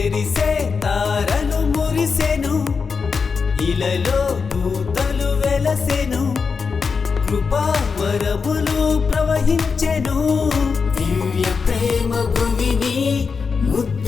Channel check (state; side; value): quieter; right; 5.3 dB